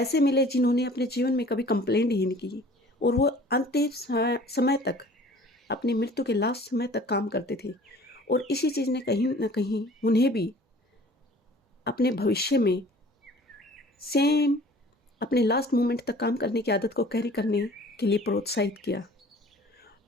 मिले जिन्होंने अपने जीवन में कभी कंप्लेंट ही नहीं की और वो अंतिम समय तक, अपनी मृत्यु के लास्ट समय तक काम करते थे। और इसी चीज़ ने कहीं ना कहीं उन्हें भी अपने भविष्य में सेम अपने लास्ट मोमेंट तक काम करने की आदत को कैरी करने के लिए प्रोत्साहित किया।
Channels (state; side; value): normal; both; correlation 0.49